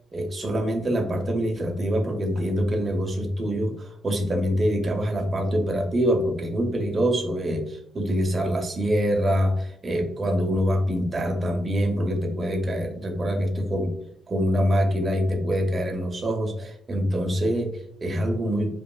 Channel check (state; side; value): normal; both; correlation 0.84